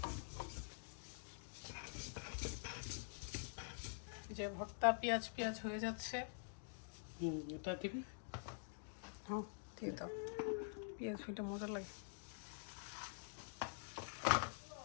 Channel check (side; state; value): right; silent; digital silence